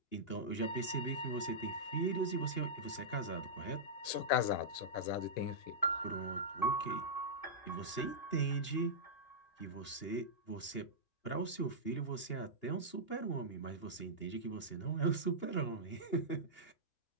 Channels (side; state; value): right; late; 2.8 ms